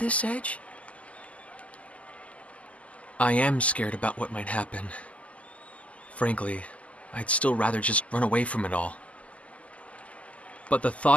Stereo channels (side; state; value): right; late; 0.067 ms